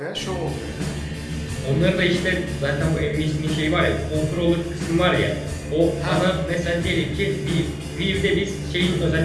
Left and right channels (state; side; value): identical; both; correlation 1.00